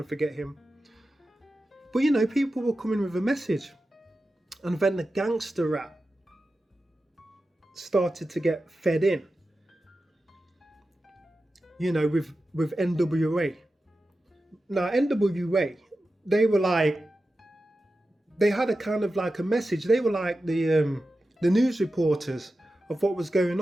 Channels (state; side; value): normal; both; correlation 0.93